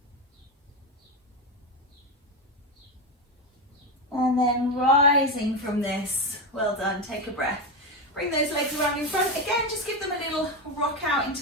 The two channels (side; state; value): both; normal; correlation 0.13